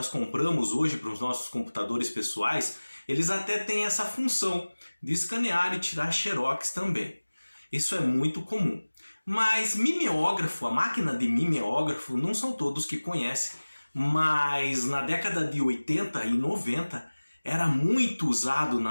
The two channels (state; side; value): inverted; both; correlation -1.00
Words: compramos hoje para os nossos computadores pessoais, eles até têm essa função de escanear e tirar Xerox também. Isso é muito comum. Mas mimeógrafo, a máquina de mimeógrafo, não são todos que conhecem. Mas na década de 80 e 90 era muito usado